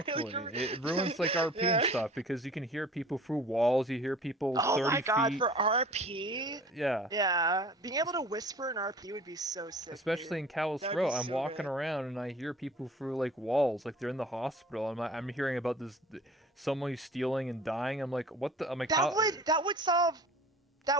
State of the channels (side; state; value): both; normal; correlation 0.46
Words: Exactly. It ruins like RP and yeah. stuff because you can hear people through walls. You hear people Oh 30 my god, feet. for RP, Yeah. yeah, being able to whisper in RP would be so sick, dude. Especially in Callous That would Row, be I'm so walking good. around and I hear people through like walls, like they're in the hospital. I'm hearing about this someone who's stealing and dying. I'm like, what the? I'm like, That how? would that would solve